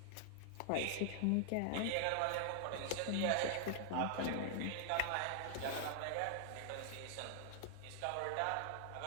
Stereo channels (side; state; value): both; different; correlation 0.00